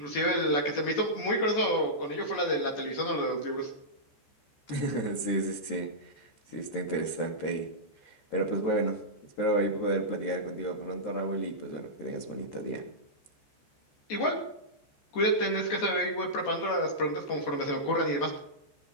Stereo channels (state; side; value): late; right; 14 ms